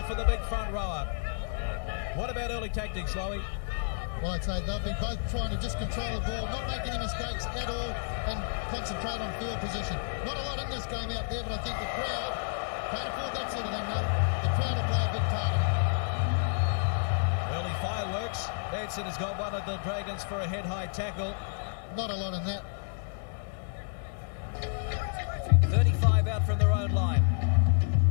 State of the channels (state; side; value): silent; right; 58 dB below the other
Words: for the big front rower. What about early tactics, Lowy? Well, I'd say they'll be both trying to just control the ball, not make any mistakes at all, and concentrate on field position. Not a lot in this game out there, but I think the crowd can't afford that sort of thing, though. The crowd will play a big part in it. Early fireworks. Benson has got one of the Dragons for a head-high tackle. Not a lot in that. 35 out from their own line.